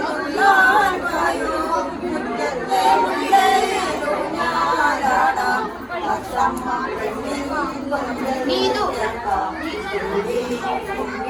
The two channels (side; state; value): both; identical; correlation 1.00